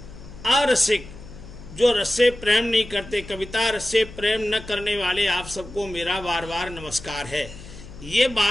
अरसिक, जो रस से प्रेम नहीं करते, कविता रस से प्रेम न करने वाले आप सबको मेरा बार बार नमस्कार है। ये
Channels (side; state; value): left; noise; hum, 15 dB below the sound